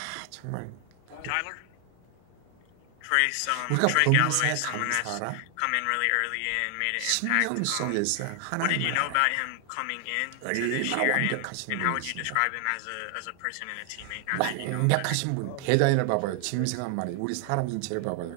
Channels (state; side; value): different; both; correlation 0.00